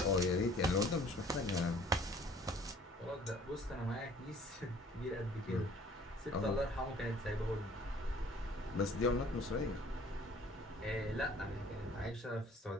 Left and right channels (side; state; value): both; normal; correlation 0.54